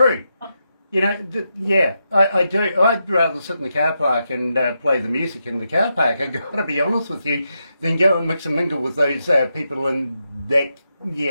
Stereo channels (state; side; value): inverted; both; correlation -0.85